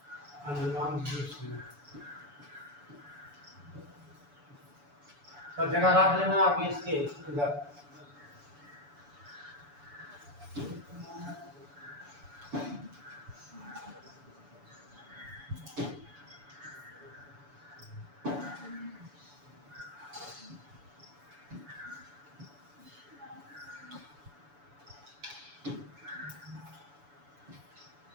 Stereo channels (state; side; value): late; left; 7.0 ms